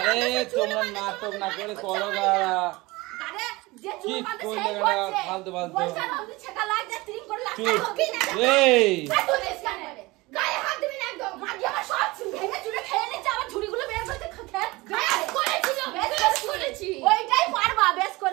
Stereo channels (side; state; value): left; quieter; 22.1 dB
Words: আরে তোমরা নাটক না করে করো গাড়া আরে যে কি চুল বাঁধে করলে সেই গাড়া করছে ফালতু ফালতু বলছে আমি ছেকা লাগ যা ট্রিম করে লাগ চুপ এই তুই দেশ কানে